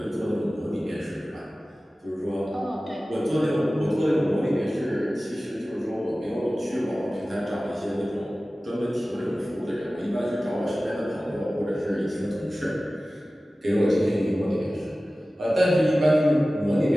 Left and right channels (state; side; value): normal; both; correlation 0.96